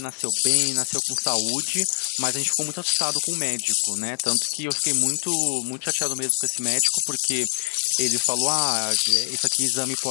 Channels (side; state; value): right; silent; digital silence